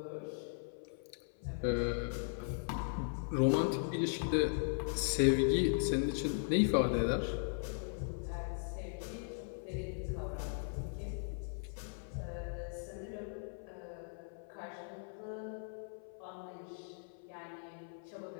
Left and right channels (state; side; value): silent; right; 52 dB below the other